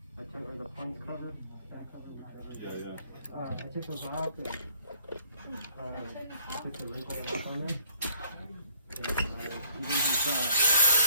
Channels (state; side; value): inverted; both; correlation -0.62